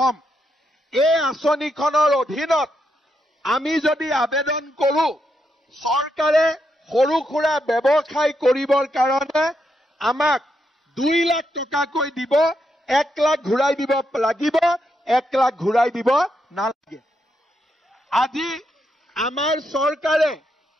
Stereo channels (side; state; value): both; normal; correlation 0.81